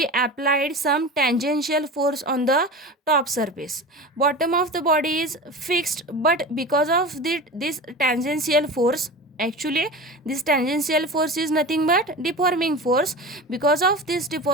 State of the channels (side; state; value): both; normal; correlation 0.31